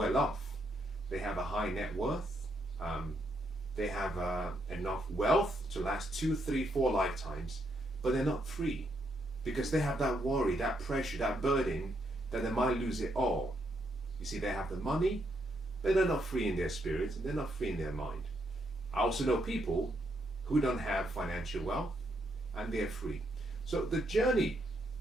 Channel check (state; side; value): normal; both; correlation 0.76